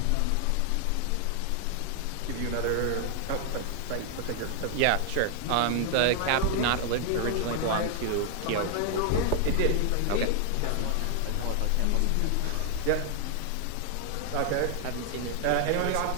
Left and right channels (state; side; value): different; both; correlation 0.00